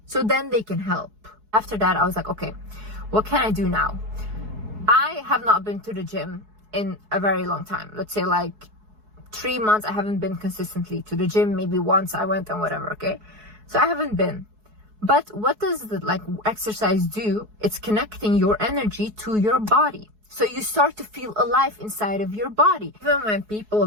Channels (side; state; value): left; late; 4.7 ms